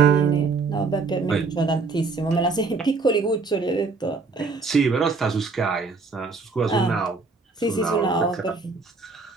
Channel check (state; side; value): quieter; left; 4.3 dB